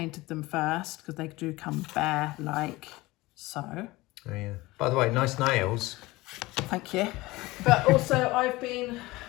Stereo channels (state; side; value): quieter; right; 20.3 dB